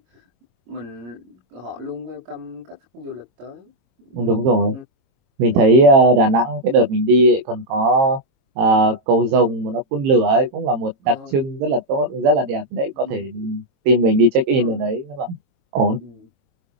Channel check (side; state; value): left; late; 22 ms